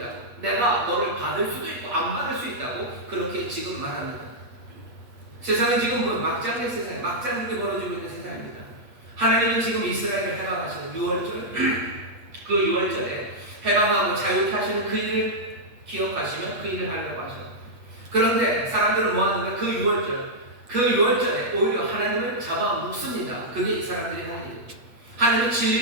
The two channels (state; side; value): late; left; 8.4 ms